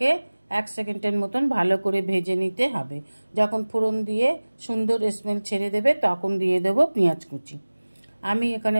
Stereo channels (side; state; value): both; inverted; correlation -1.00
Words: 1 সেকেন্ডের মতন ভালো করে ভেজে নিতে হবে। যখন ফোড়ন দিয়ে সুন্দর স্মেল ছেড়ে দেবে তখন দিয়ে দেব পেঁয়াজ কুচি। আমি